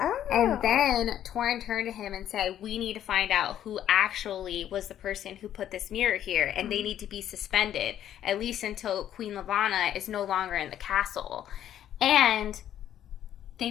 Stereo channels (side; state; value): right; quieter; 11.0 dB